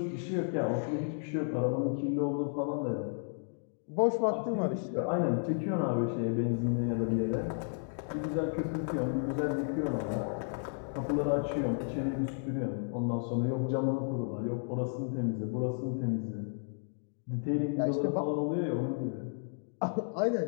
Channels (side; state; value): right; silent; digital silence